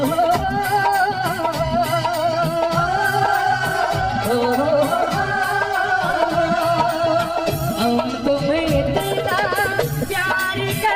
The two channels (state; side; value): noise; left; hum, 24 dB below the sound